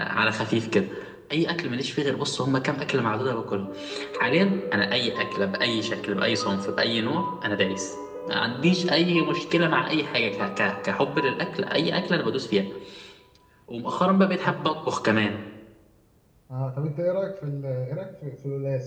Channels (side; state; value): both; identical; correlation 1.00